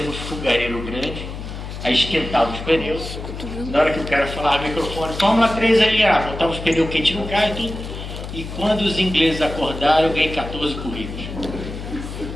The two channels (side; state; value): left; noise; hum, 9 dB below the sound